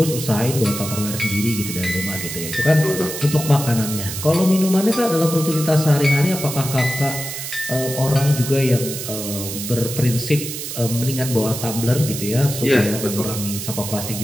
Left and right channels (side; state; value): right; noise; hiss, 7 dB below the sound